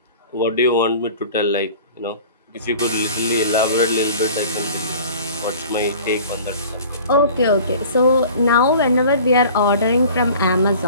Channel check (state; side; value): inverted; both; correlation -0.44